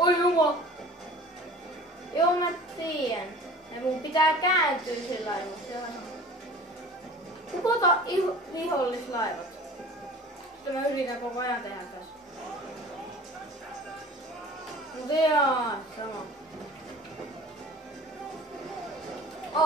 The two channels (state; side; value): normal; both; correlation 0.43